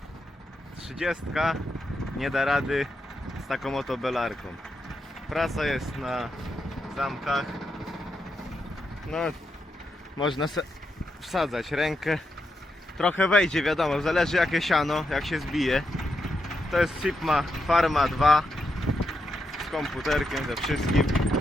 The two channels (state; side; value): normal; both; correlation 0.84